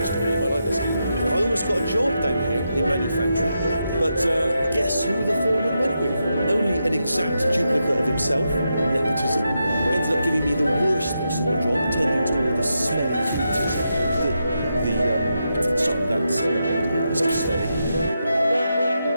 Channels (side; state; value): both; inverted; correlation -0.86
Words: story. You might like this. I almost got a job down here in manufacturing, but guess who the foreman went with? Only an exact duplicate of himself. Nepotism. Ended up giving me the worst possible job, tending to all the smelly humans. Sorry, that's it's steady.